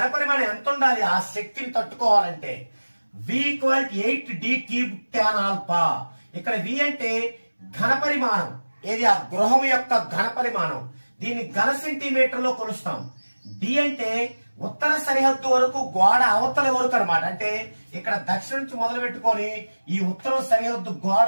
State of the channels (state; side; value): inverted; both; correlation -1.00